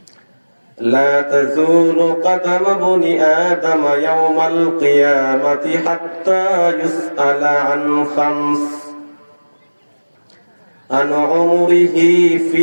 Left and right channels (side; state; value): both; inverted; correlation -1.00